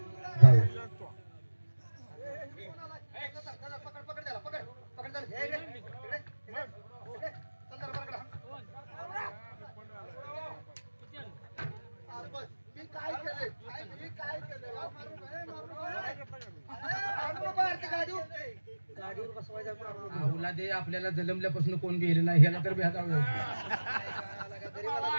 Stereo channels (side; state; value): both; inverted; correlation -1.00